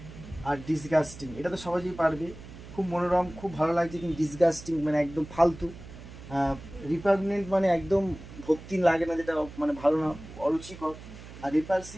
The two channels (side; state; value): right; noise; hum, 15 dB below the sound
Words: আর ডিসগাস্টিং। এটা তো সহজেই পারবে, খুব মনোরম, খুব ভালো লাগছে, কিন্তু ডিসগাস্টিং মানে একদম ফালতু। রিপাগনেন্ট মানে একদম ভক্তি লাগে না, যেটা মানে ভালো না, অরুচিকর। আর